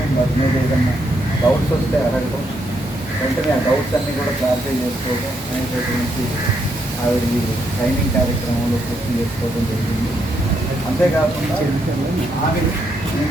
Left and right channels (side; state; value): both; normal; correlation 0.77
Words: వాటి మీద ఏదన్నా డౌట్స్ వస్తే అడగడం, వెంటనే ఆ డౌట్స్ అన్నీ కూడా క్లారిఫై చేసుకోవడం అనేటటువంటి ఆవిడ ఈ ట్రైనింగ్ కార్యక్రమంలో పూర్తి చేసుకోవడం జరిగింది. అంతేకాకుండా ఆమె ఈ